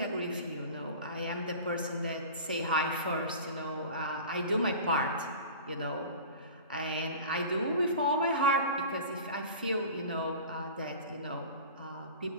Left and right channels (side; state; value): both; inverted; correlation -0.37